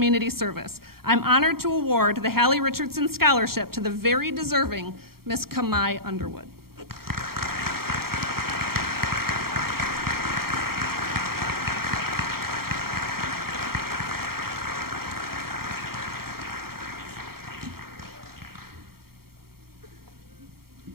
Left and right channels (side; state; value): left; late; 0.94 ms